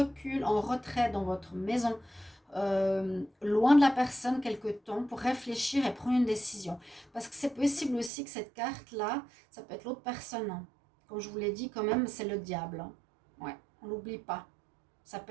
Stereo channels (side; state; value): left; drops out; at 8.1 s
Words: en retrait dans votre maison, loin de la personne quelque temps pour réfléchir et prendre une décision. Parce que c'est possible aussi que cette carte-là, ça peut être l'autre personne. Hein. Comme je vous l'ai dit, quand même, c'est le diable. Hein. Ouais, on l'oublie pas. Ça